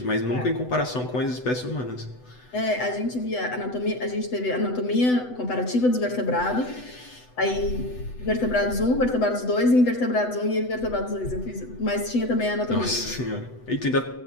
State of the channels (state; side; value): late; right; 8.0 ms